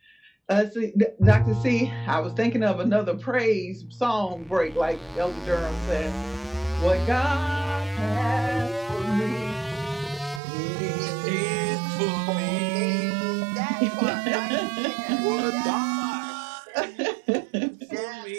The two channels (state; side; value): drops out; left; at 10.4 s